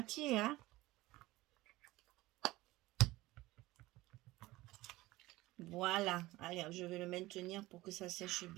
hein. Voilà. Allez, je vais le maintenir pour que ça sèche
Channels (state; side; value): quieter; left; 18.7 dB